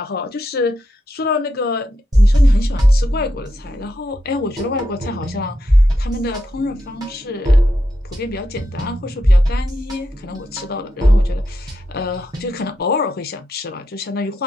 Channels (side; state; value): both; normal; correlation 0.84